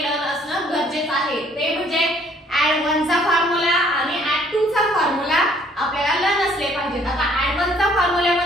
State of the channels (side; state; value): both; normal; correlation 0.61